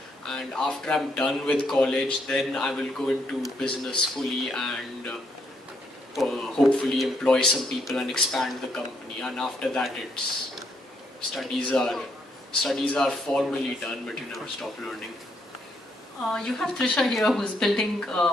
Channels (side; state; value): both; normal; correlation 0.74